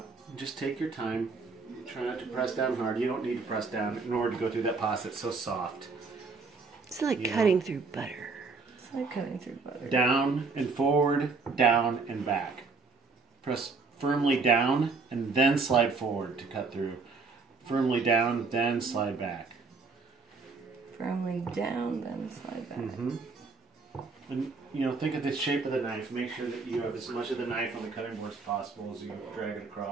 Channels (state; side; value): quieter; left; 4.3 dB